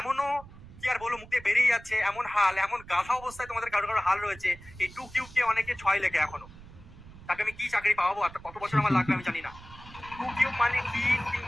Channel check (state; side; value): noise; right; rumble, 18 dB below the sound